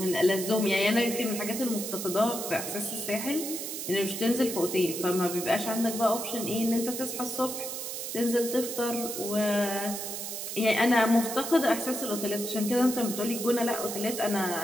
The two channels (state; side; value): noise; right; hiss, 6 dB below the sound